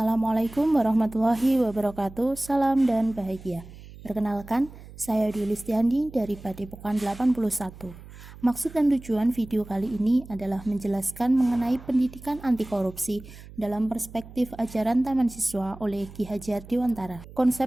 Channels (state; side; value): noise; right; hum, 17 dB below the sound